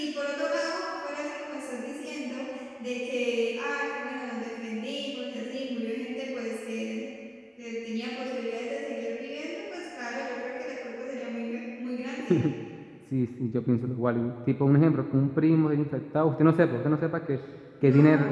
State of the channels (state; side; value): identical; both; correlation 1.00